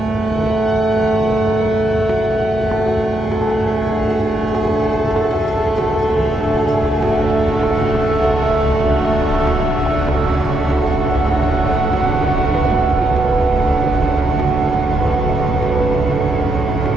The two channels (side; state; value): both; normal; correlation 0.79